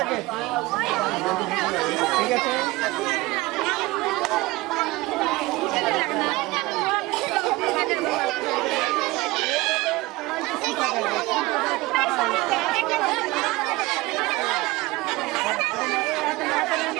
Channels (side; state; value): left; quieter; 20.9 dB